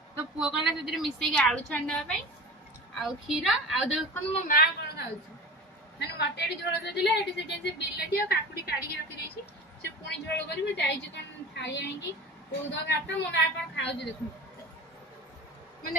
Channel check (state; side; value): normal; both; correlation 0.35